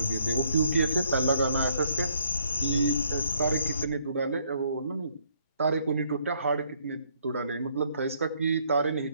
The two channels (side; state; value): both; inverted; correlation -0.68